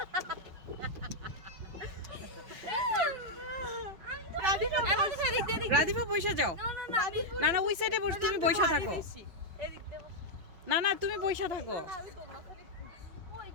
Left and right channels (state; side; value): late; left; 5.8 ms